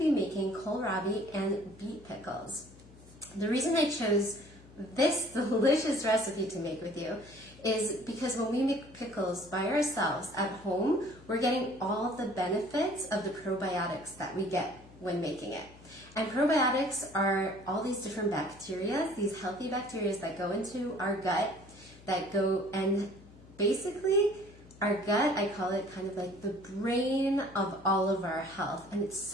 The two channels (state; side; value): noise; left; hum, 22 dB below the sound